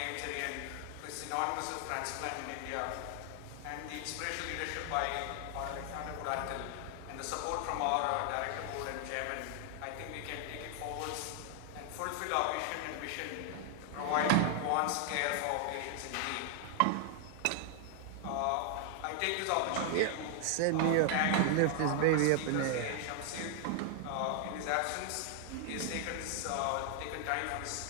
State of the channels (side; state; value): both; different; correlation 0.00